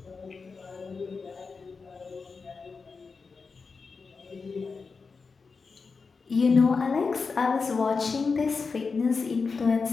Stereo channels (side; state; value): right; quieter; 4.8 dB